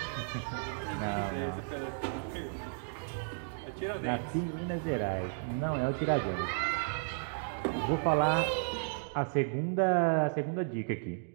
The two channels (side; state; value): left; silent; digital silence